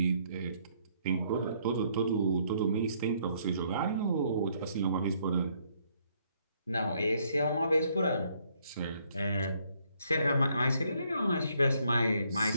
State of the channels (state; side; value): inverted; both; correlation -0.69